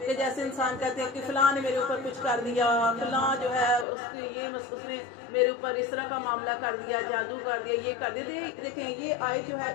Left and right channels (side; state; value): right; drops out; at 3.9 s